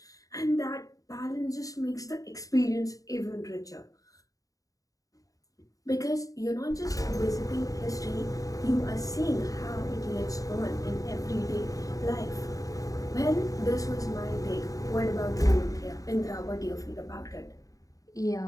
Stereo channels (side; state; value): right; late; 0.17 ms